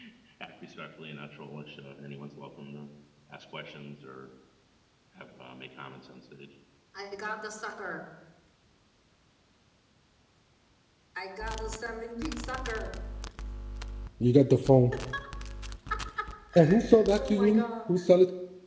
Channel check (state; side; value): identical; both; correlation 1.00